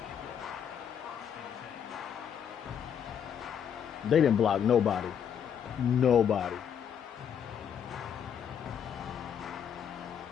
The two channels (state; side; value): quieter; right; 8.3 dB